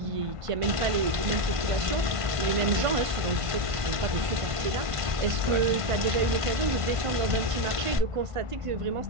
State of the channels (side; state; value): left; late; 1.5 ms